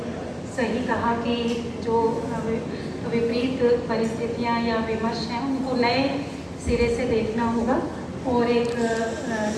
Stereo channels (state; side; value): identical; both; correlation 1.00